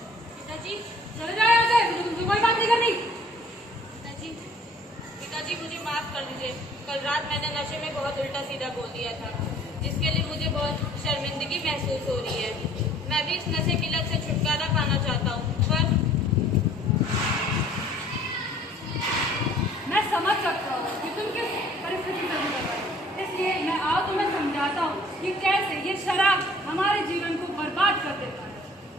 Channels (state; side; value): normal; both; correlation 0.54